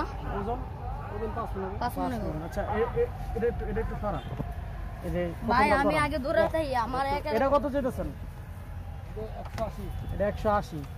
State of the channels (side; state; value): both; identical; correlation 1.00